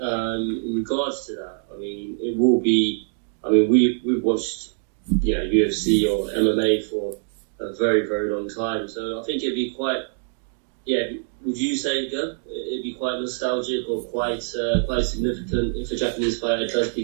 regards to that, I mean, it will be. I mean, we've watched, UFC or MMA for a very, very long time, so I think it'd be quite Yeah, would you say, Gab, it'd be quite nostalgic or quite significant if a Japanese fighter does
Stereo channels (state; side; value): silent; left; digital silence